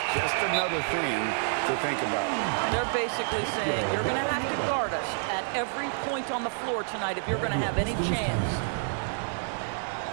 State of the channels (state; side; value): silent; left; 59 dB below the other